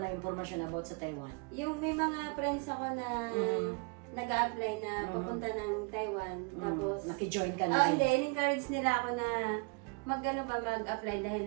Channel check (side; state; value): left; quieter; 32.4 dB